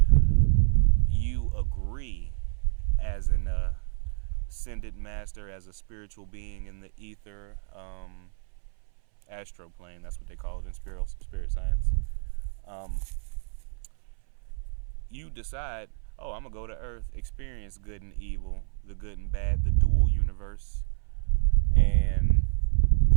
You agree as an ascended master, as a spiritual being in the ether, astro plane, that's what they call it in spirit science. You decide, I'm going to go to Earth, experience good and evil, the good and bad, the dual universe, and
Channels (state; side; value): silent; left; 59 dB below the other